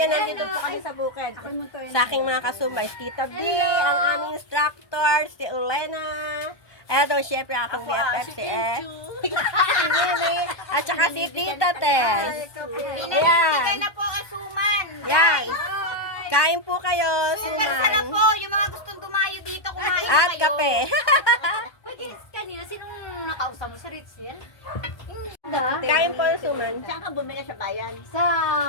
nandito po kami sa bukid. Sa aking mga kasumay, si Tita B, ang aming instructor, si Ulena. Eto, syempre akong BFF si si Mimi, at saka si Tita Tess. Ayan. na po asuman. Yan. Kain po kayo, Sana suman. po, yung mga gustong dumayo dito, kumain At kayo. kape. Pwede, kanina, sinong nakausap mo sa Ritzel? Kain po yung suman. Saan ka bumili sa bayan? Sa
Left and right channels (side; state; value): right; late; 1.2 ms